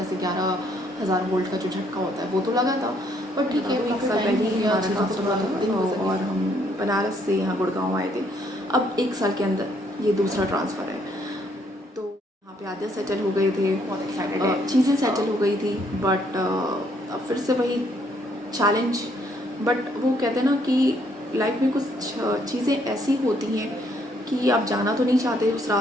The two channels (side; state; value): both; normal; correlation 0.68